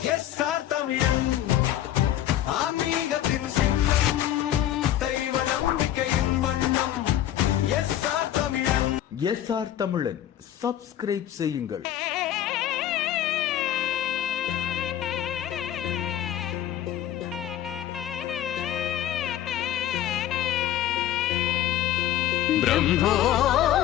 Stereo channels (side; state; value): right; quieter; 12.1 dB